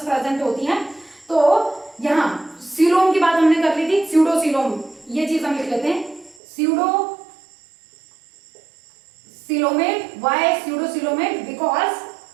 प्रेजेंट होती हैं। तो यहाँ सीलोम की बात हमने कर ली थी, स्यूडोसीलोम, ये चीज हम लिख लेते हैं, pseudo coelomate, why pseudocoelomate, because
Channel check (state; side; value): drops out; left; at 6.4 s